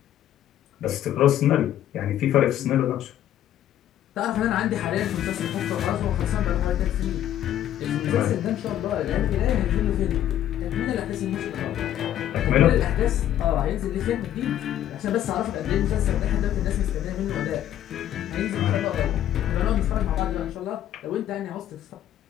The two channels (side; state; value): right; quieter; 11.6 dB